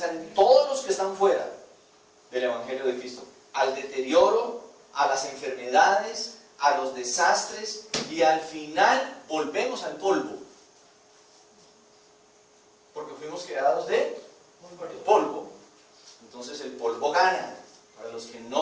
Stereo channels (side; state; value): both; identical; correlation 1.00